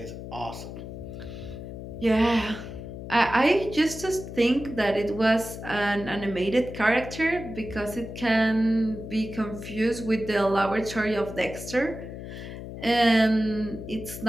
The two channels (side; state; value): left; noise; hum, 10 dB below the sound